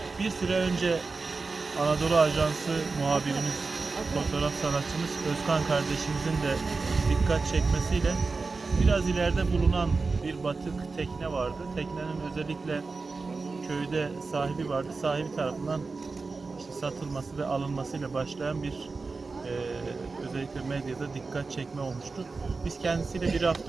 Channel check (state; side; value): quieter; left; 4.1 dB